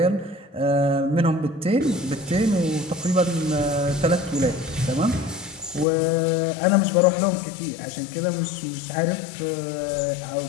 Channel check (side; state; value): right; drops out; at 5.9 s